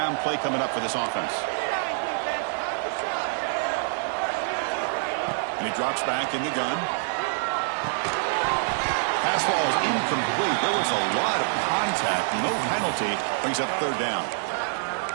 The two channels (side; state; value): left; silent; digital silence